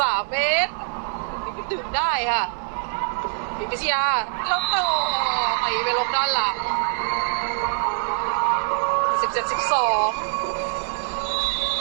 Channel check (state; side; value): silent; left; 58 dB below the other